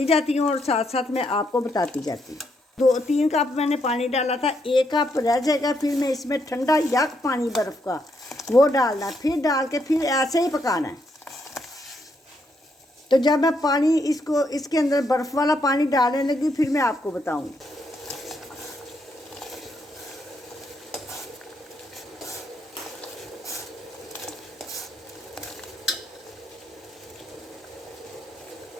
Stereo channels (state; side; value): normal; both; correlation 0.77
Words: जाती हूँ और साथ साथ मैं आपको बताती जाती हूँ। 2-3 कप मैंने पानी डाला था, 1 कप रह जाएगा। फिर मैं इसमें ठंडा यक पानी बर्फ़ का वो डालना, फिर डाल के फिर ऐसे ही पकाना है। तो जब मैं पानी इसको इसके अंदर बर्फ़ वाला पानी डालने लगी फिर मैं आपको बताऊँगी।